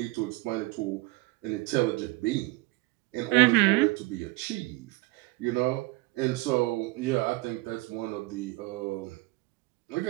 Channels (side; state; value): left; quieter; 21.8 dB